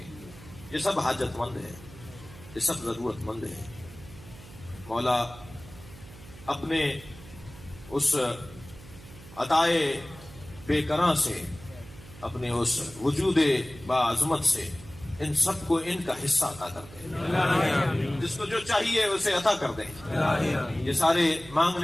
یہ سب حاجت مند ہیں، یہ سب ضرورت مند ہیں. مولا اپنے اس عطائے بے کراں سے، اپنے اس وجود باعظمت سے ان سب کو ان کا حصہ عطا کر دیں. جس کو جو چاہیے اسے عطا کر دیں. یہ سارے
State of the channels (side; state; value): right; noise; hum, 18 dB below the sound